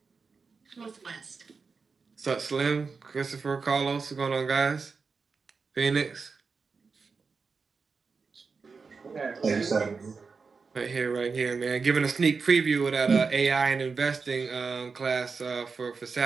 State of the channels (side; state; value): left; quieter; 4.9 dB